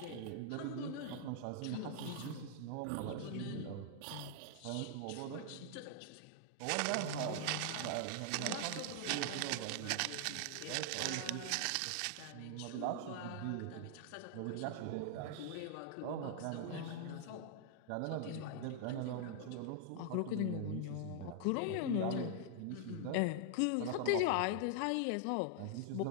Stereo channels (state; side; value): different; both; correlation 0.00